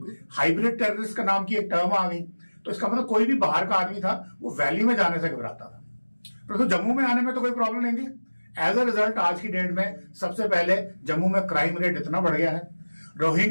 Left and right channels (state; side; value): inverted; both; correlation -1.00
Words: हाइब्रिड टेररिस्ट का नाम की एक टर्म आ गई। तो इसका मतलब कोई भी बाहर का आदमी था वो वैली में जाने से घबराता था, परंतु तो जम्मू में आने में तो कोई प्रॉब्लम नहीं थी। एज अ रिजल्ट आज की डेट में सबसे पहले जम्मू में क्राइम रेट इतना बढ़ गया है,